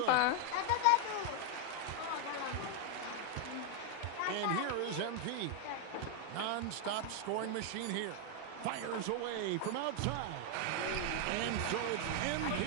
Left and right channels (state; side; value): different; both; correlation 0.00